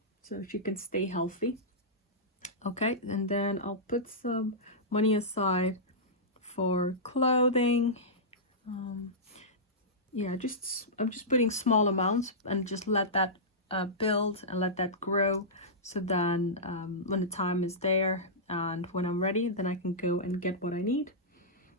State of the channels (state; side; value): normal; both; correlation -0.14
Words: so she can stay healthy. Okay, and then I'll put some money aside for clothing. Yeah, I'm just putting small amounts and just let that build and let that grow, so then when the time is there and when I'm ready, then I can go and get what I need.